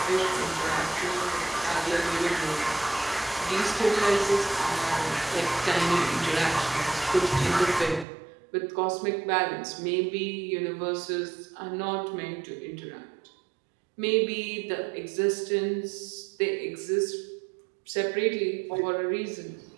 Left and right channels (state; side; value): drops out; left; at 8.1 s